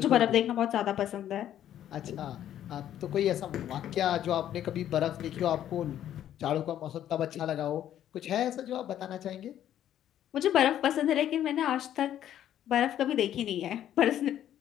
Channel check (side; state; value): right; quieter; 11.2 dB